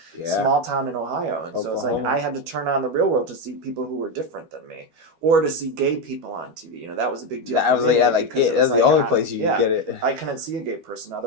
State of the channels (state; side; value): late; left; 12 ms